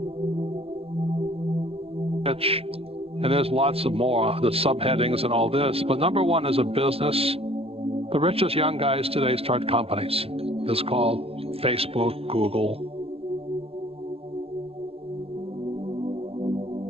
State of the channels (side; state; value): left; late; 0.28 ms